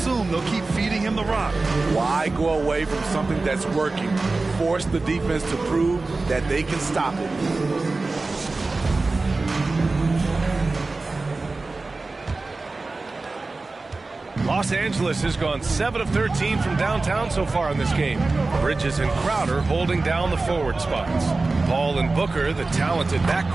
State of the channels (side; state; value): left; quieter; 3.5 dB